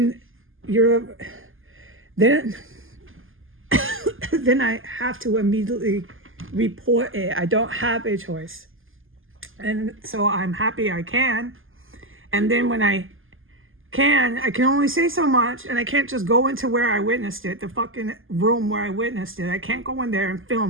then then I have to immediately report it. I don't have a choice. And so I'm happy I can. And then when I can only say so much, and I can't just go into where I witnessed it, the fucking room where I witnessed it. I can't go in there and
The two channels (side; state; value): left; late; 0.59 ms